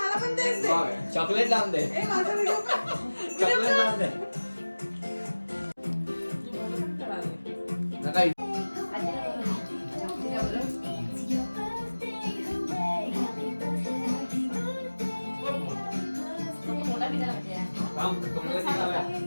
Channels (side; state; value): both; inverted; correlation -1.00